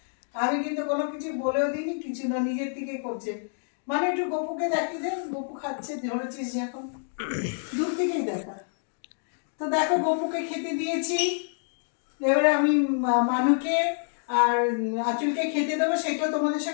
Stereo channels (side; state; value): right; silent; digital silence